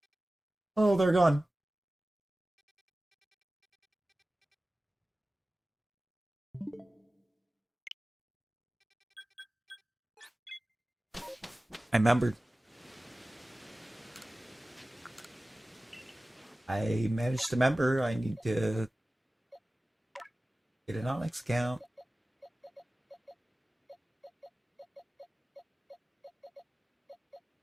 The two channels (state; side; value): normal; both; correlation 0.97